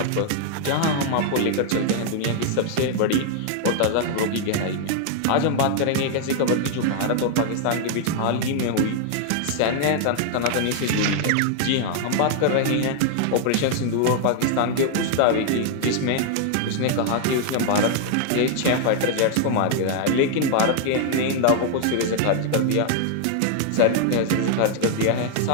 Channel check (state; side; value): different; both; correlation 0.00